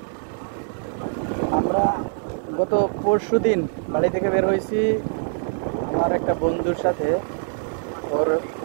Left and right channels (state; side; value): silent; left; 63 dB below the other